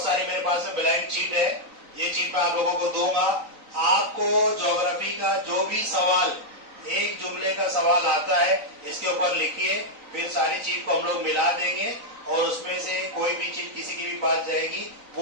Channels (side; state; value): left; late; 3.9 ms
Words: सारी मेरे पास में ब्लैंक चीट है। ये चीट मैं आप लोगों को दूंगा। आपको ज्योग्राफी का जो भी सवाल, एक जुमले का सवाल आता है, इसके ऊपर लिखिए। फिर सारी चीज को हम लोग मिला देंगे और उसमें से कोई भी चीज किसी की भी पास जाएगी,